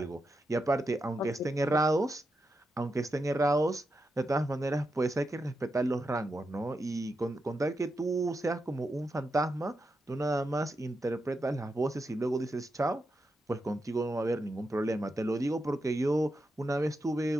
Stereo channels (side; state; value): both; normal; correlation 0.86